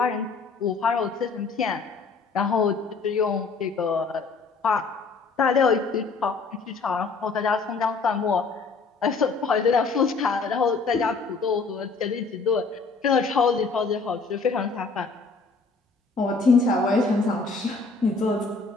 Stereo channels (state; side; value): quieter; right; 4.3 dB